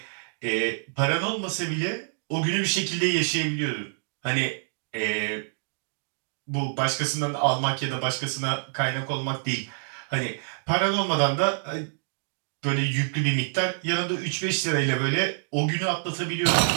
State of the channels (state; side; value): silent; left; digital silence